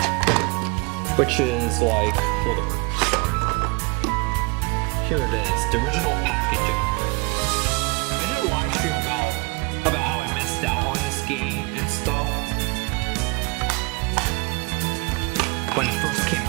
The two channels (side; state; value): left; quieter; 28.7 dB